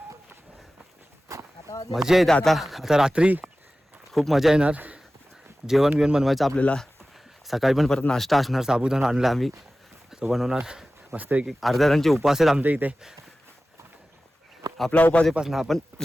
मजा येते. आता रात्री खूप मजा येणार. जेवण बिवण बनवायचं आपल्याला. सकाळी पण परत नाश्ता असणार, साबुदाणा आणला आम्ही, तो बनवणार मस्त. एक अर्ध्या जणांचे उपवास आहेत आमच्या इथे. आपला उपास आहे ना, आपण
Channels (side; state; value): both; normal; correlation 0.96